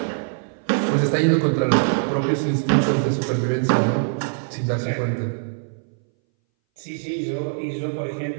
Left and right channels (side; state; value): left; silent; 61 dB below the other